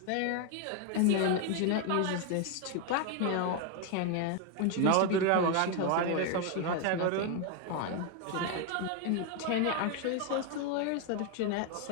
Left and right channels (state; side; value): different; both; correlation 0.01